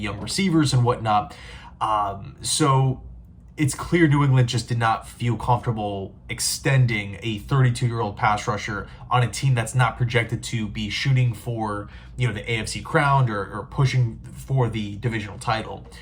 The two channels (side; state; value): both; identical; correlation 1.00